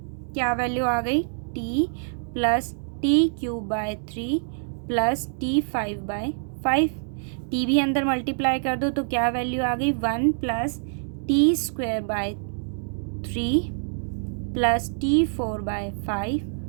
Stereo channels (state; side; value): silent; left; digital silence